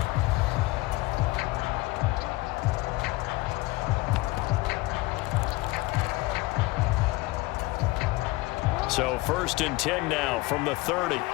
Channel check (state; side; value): quieter; right; 21.1 dB